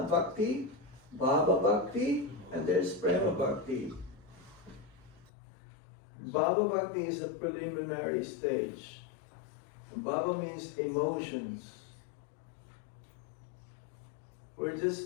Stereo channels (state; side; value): drops out; right; at 5.3 s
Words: bhakti, bhava bhakti, and there's prema bhakti. Bhava bhakti is a preliminary stage. Bhava means emotions. We're